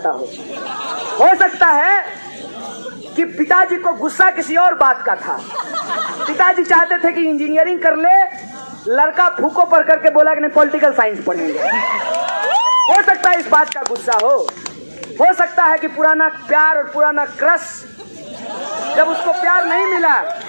हो सकता है कि पिताजी को गुस्सा किसी और बात का था। पिताजी चाहते थे कि इंजीनियरिंग कर ले, लड़का फूको पढ़ करके बोला कि नहीं पॉलिटिकल साइंस पढ़ेंगे। हो सकता है इस बात का गुस्सा हो सकता है कि पुराना प्यार और पुराना क्रश, जब उसको प्यार नहीं मिला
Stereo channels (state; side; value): inverted; both; correlation -1.00